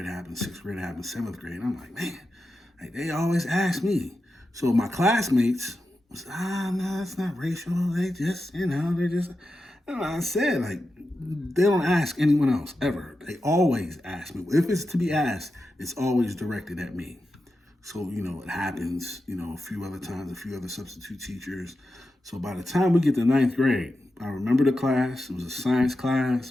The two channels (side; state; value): both; normal; correlation 0.90